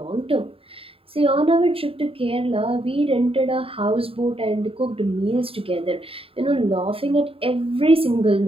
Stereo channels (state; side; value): late; left; 0.27 ms